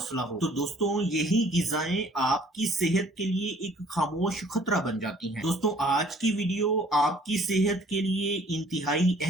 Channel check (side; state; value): both; normal; correlation 0.57